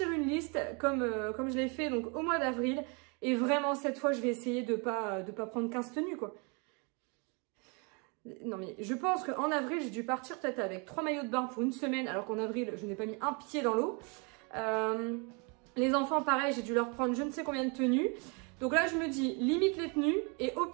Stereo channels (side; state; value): left; quieter; 33.2 dB